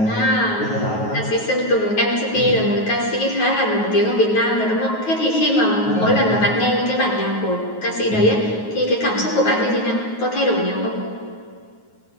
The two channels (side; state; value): right; late; 9.4 ms